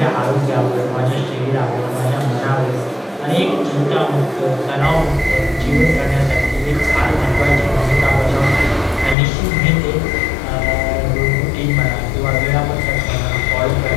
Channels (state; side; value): drops out; right; at 9.2 s